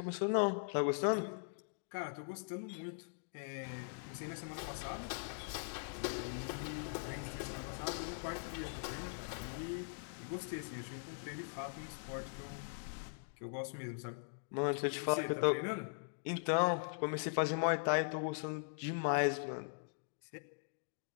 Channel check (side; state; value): right; silent; digital silence